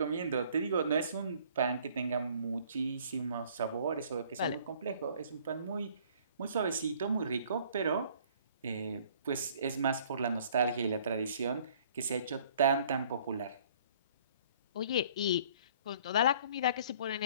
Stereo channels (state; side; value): inverted; both; correlation -0.56